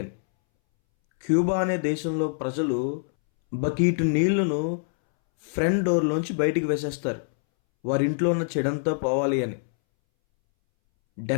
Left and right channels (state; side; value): silent; right; 62 dB below the other